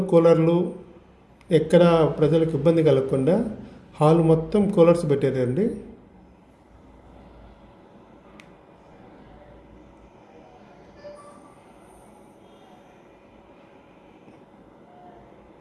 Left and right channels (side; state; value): both; identical; correlation 1.00